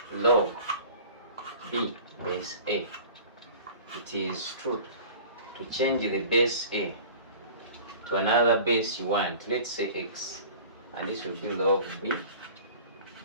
log b base a, it is true to change the base a to another base you want, let's say x, and this will be log b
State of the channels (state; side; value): inverted; both; correlation -0.42